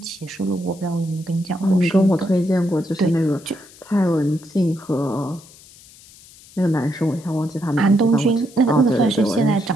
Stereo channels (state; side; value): noise; left; hiss, 23 dB below the sound